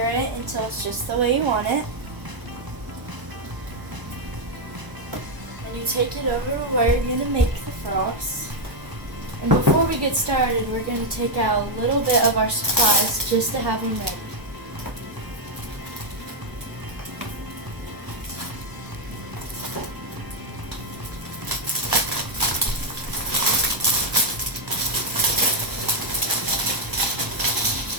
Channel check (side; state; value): left; late; 1.0 ms